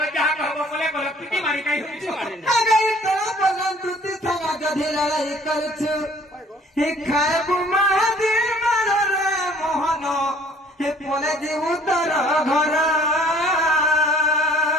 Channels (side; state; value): both; normal; correlation 0.55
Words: যাগ হব বলে বলে পিটি মারি কাই হইছো আরে কোন প্রধান দুটি সঙ্গ যদি লড়াই করুছু হে খায়বু মহাদেব মানরে মোহন হে बोले जीव तर घर